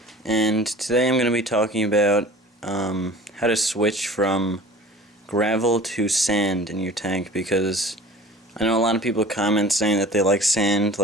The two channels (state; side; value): normal; both; correlation 0.43